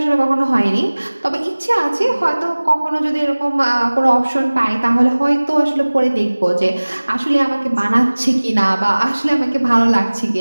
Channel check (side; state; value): both; inverted; correlation -1.00